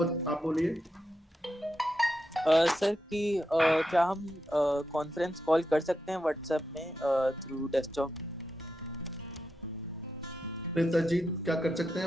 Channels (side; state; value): both; normal; correlation 0.86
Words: बोलिए। सर कि क्या हम कॉन्फ्रेंस कॉल कर सकते हैं व्हाट्सएप में थ्रू डेस्कटॉप? जी, क्या कर सकते